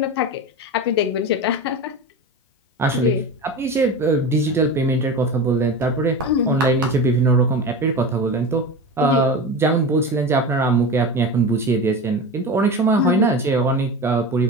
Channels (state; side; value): normal; both; correlation 0.27